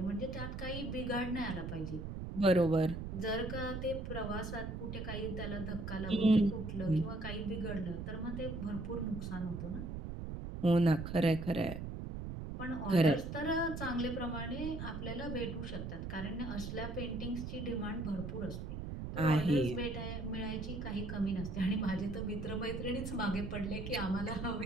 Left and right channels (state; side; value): noise; right; rumble, 6 dB below the sound